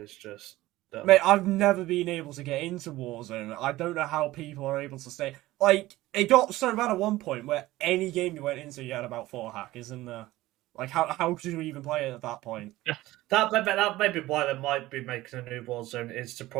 is just. Dumb. mate, I've never been able to get into Warzone. I don't know how people are able to stay. Like, it got so bad at one point where any game you went into, you had about 4 hackers in there. Like, how could you even play it at that point? That may be why they might be making a new Warzone, is to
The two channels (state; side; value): quieter; left; 17.3 dB